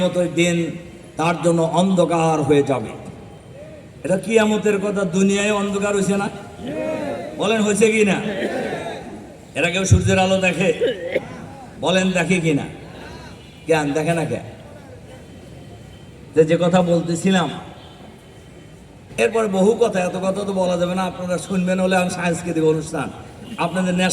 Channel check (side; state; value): both; identical; correlation 1.00